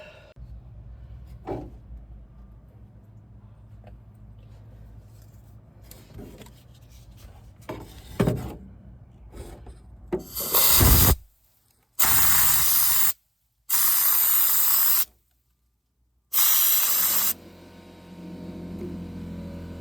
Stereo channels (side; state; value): both; identical; correlation 1.00